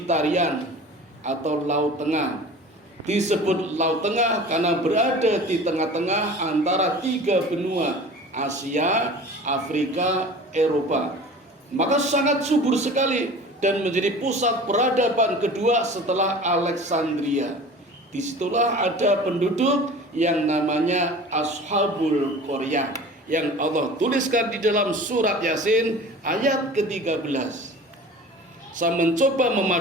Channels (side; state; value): both; normal; correlation 0.41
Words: atau Laut Tengah. Disebut Laut Tengah karena berada di tengah-tengah antara 3 benua, Asia, Afrika, Eropa. Maka sangat subur sekali dan menjadi pusat peradaban kedua setelah Alexandria. Disitulah ada penduduk yang namanya Ashabul Qaryah yang Allah tuliskan di dalam surat Yasin ayat ke-13. Saya mencoba